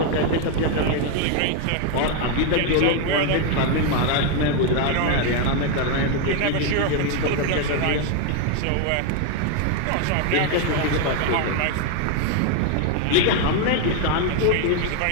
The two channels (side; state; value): both; different; correlation 0.01